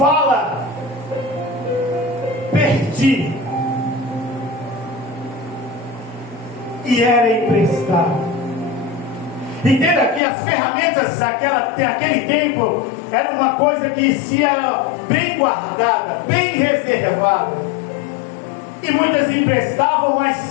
perdi, e era emprestado. Entenda que as ferramentas daquele tempo era uma coisa que ia bem guardada, bem reservada. E muitas emprestavam,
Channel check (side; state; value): right; drops out; at 10.2 s